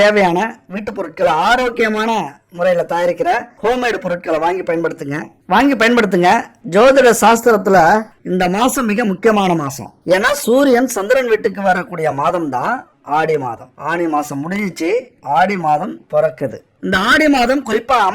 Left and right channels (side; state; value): both; identical; correlation 1.00